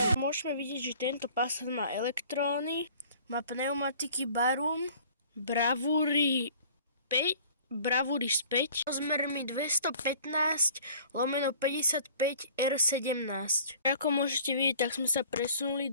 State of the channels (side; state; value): both; inverted; correlation -0.50